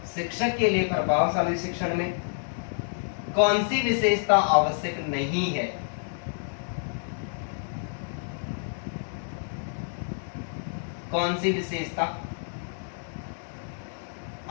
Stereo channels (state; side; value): silent; right; digital silence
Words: शिक्षक के लिए प्रभावशाली शिक्षण में कौन सी विशेषता आवश्यक नहीं है। कौन सी विशेषता